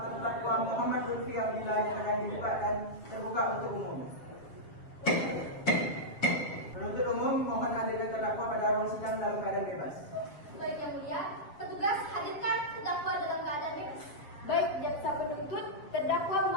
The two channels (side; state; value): right; late; 7.1 ms